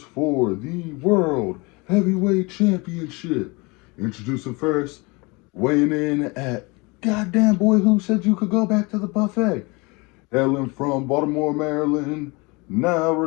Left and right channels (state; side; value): quieter; right; 26.9 dB